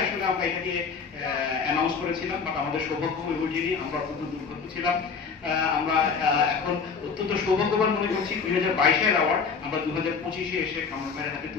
আসলে আমরা এটাকে অ্যানাউন্স করেছিলাম, বাট আমাদের সৌভাগ্য হয়ে ওঠেনি, আমরা অত্যন্ত দুর্ভাগ্য ছিলাম। আমরা এখন অত্যন্ত সৌভাগ্যবান মনে করছি 2022-এর অ্যাওয়ার্ড আমরা 2025-এ এসে কামরান ভাইয়ের হাতে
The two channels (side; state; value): right; quieter; 5.5 dB